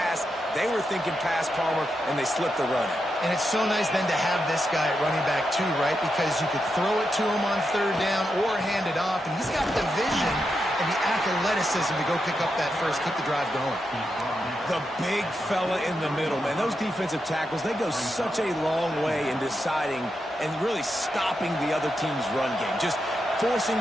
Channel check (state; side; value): normal; both; correlation 0.86